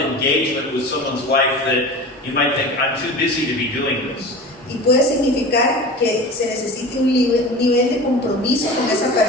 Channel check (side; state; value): both; normal; correlation 0.34